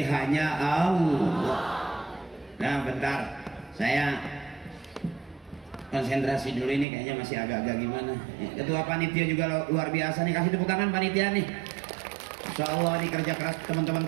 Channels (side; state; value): left; drops out; at 6.9 s